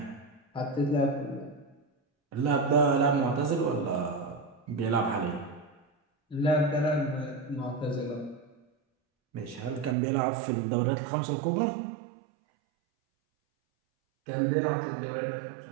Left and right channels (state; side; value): drops out; left; at 10.0 s